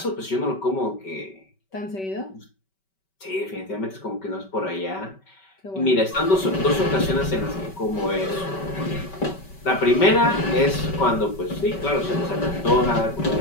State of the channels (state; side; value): late; right; 5.2 ms